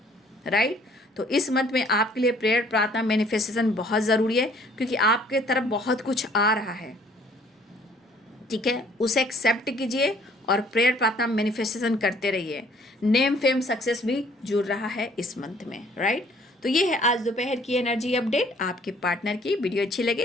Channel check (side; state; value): both; normal; correlation 0.59